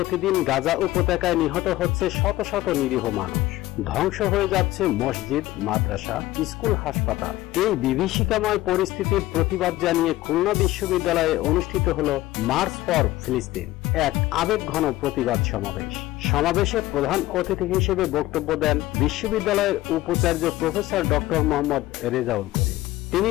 গাজা উপত্যকায় নিহত হচ্ছে শত শত নিরীহ মানুষ, ধ্বংস হয়ে যাচ্ছে মসজিদ, মাদ্রাসা, স্কুল, হাসপাতাল। এই বিভীষিকাময় পরিস্থিতির প্রতিবাদ জানিয়ে খুলনা বিশ্ববিদ্যালয়ে অনুষ্ঠিত হলো মার্চ ফর ফিলিস্তিন, এক আবেগঘন প্রতিবাদ সমাবেশ। সমাবেশে প্রধান অতিথি হিসেবে বক্তব্য দেন বিশ্ববিদ্যালয়ের উপাচার্য প্রফেসর ডক্টর মোহাম্মদ রেজাউল করিম। তিনি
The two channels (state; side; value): quieter; right; 16.8 dB